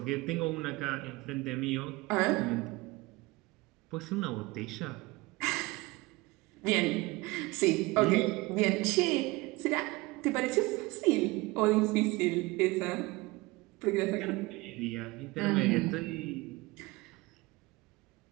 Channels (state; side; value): quieter; left; 22.4 dB